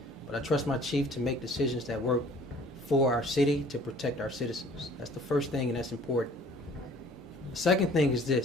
but I trust my chief to make decisions that work for our city, to protect our citizens. That's the first thing, and that's important. The second thing is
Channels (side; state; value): both; normal; correlation 0.53